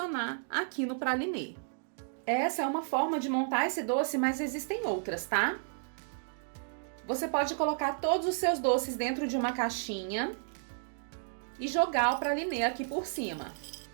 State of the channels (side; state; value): left; silent; digital silence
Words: aqui no pralinê. Essa é uma forma de montar esse doce, mas existem outras, tá? Você pode colocar todos os seus doces dentro de uma caixinha e jogar o pralinê aqui por cima.